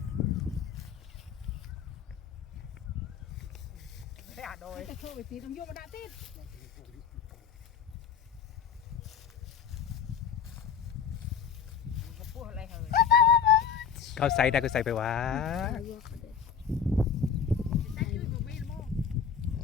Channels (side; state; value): right; quieter; 7.1 dB